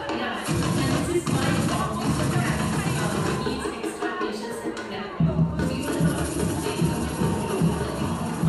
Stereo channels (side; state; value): both; identical; correlation 1.00